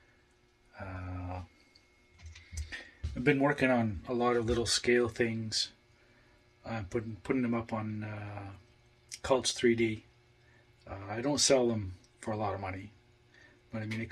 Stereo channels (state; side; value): identical; both; correlation 1.00